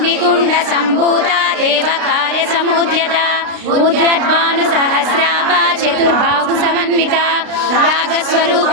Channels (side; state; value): left; late; 32 ms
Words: संभूता देव कार्य समुद्यता उद्यद्भानु सहस्राभा चतुर्बाहु समन्विता रागस्वरूप